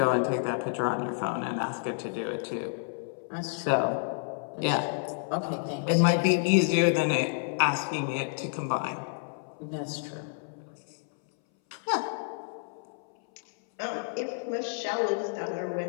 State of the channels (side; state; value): right; silent; 58 dB below the other